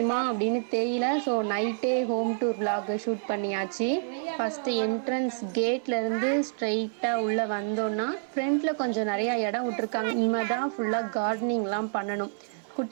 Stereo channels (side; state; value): left; silent; 56 dB below the other